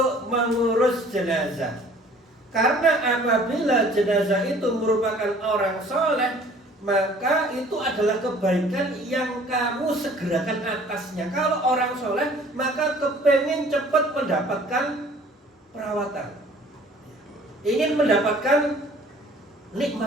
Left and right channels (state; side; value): normal; both; correlation 0.52